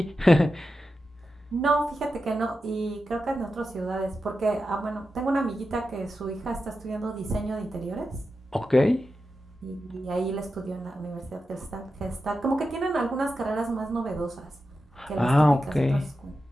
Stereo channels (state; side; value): normal; both; correlation 0.91